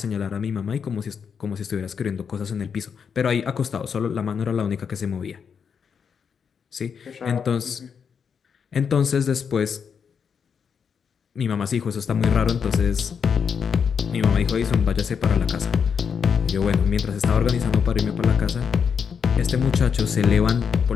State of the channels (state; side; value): quieter; right; 6.7 dB